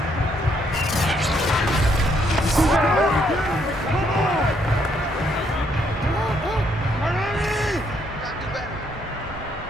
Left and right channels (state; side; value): normal; both; correlation 0.71